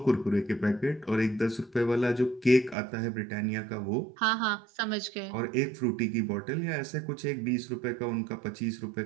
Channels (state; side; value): drops out; left; at 2.8 s